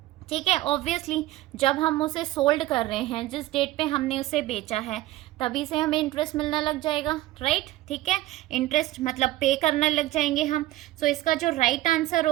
ठीक है, ऑब्वियसली जब हम उसे सोल्ड कर रहे हैं, जिस डेट पे हमने उसे बेचा है तभी से हमें इंटरेस्ट मिलना लग जाएगा, राइट। ठीक है, इंटरेस्ट मतलब पे करने लग जाएंगे हम। सो इसका जो राइट आंसर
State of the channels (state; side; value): quieter; left; 16.4 dB